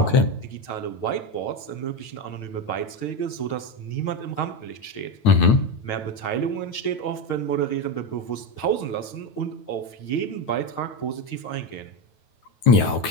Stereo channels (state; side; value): late; right; 9.2 ms